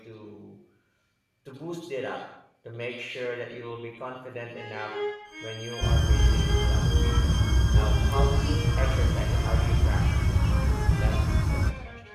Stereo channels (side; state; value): both; identical; correlation 1.00